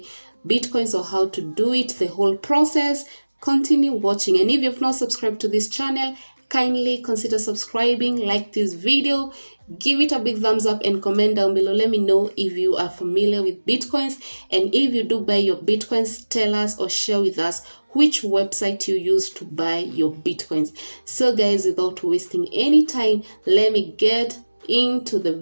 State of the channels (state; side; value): inverted; both; correlation -1.00